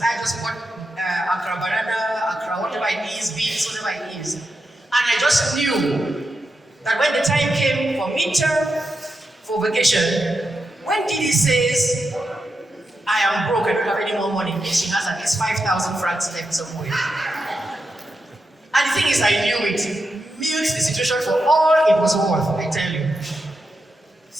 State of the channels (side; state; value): both; normal; correlation 0.87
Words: I just bought Accra banana, Accra whatever it is, beans, whatever it is. And I just knew that when the time came for midterm, for vacation, when Didi says, I am broke, I don't have any more money, she has at least 5,000 francs left somewhere. And the thing is, I knew it. Milked the situation for all it was worth, I tell you.